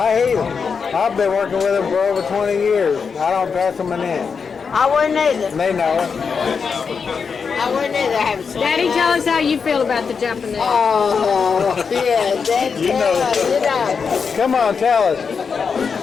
hate them. I've been working with them for over 20 years. I don't trust them in that. I wouldn't either. They know it. I wouldn't either. I haven't seen Daddy, it. tell us how you feel about the Japanese. Oh, yeah, Dad, you know. Come on, tell us.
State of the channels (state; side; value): quieter; right; 5.8 dB